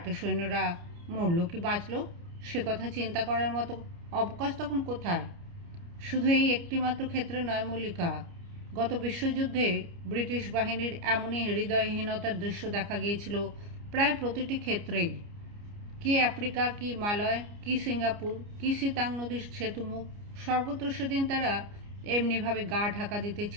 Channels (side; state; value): left; late; 29 ms